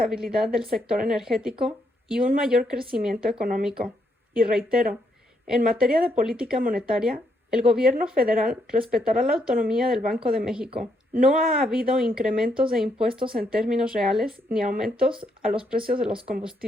del sector energético y un mayor crecimiento económico. Y reitero, en materia de política monetaria, el gobierno federal respetará la autonomía del Banco de México. No ha habido incrementos de impuestos en términos reales ni aumentos a los precios de los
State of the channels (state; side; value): normal; both; correlation 0.76